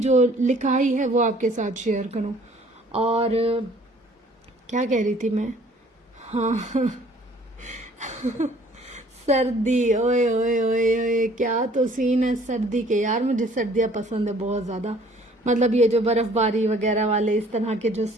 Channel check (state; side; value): normal; both; correlation 0.56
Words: جو لکھائی ہے وہ آپ کے ساتھ شیئر کروں۔ اور کیا کہہ رہی تھی میں؟ ہاں سردی، اوئے اوئے اوئے اوئے کیا تو سین ہے سردی کے، یار مجھے سردیاں پسند ہے بہت زیادہ، مطلب یہ جو برف باری وغیرہ والے اس طرح کے جو